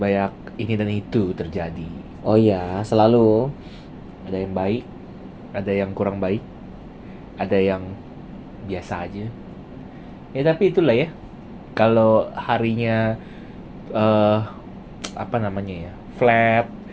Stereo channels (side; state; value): both; identical; correlation 1.00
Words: ini dan itu terjadi. Oh iya, selalu. Ada yang baik, ada yang kurang baik, ada yang biasa aja. Ya tapi itulah ya. Kalau harinya apa namanya ya, flat,